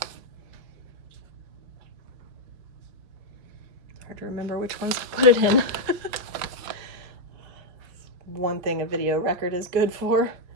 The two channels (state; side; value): late; left; 5.5 ms